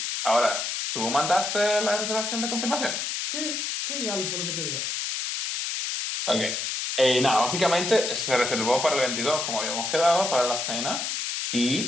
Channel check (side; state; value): left; noise; hiss, 2 dB below the sound